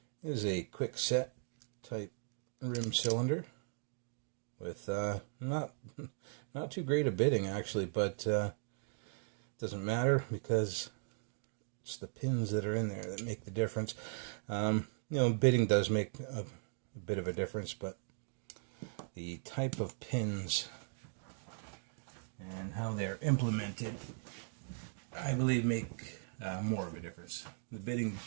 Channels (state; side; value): silent; left; digital silence